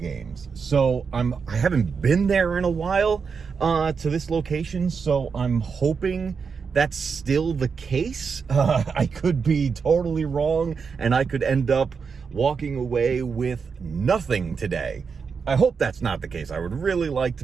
So I haven't been there in a while to this location, so I'm hoping that's still the case. I could be totally wrong, and I could end up walking away with nothing today. I hope that's not the case. I would really like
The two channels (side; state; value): left; quieter; 5.7 dB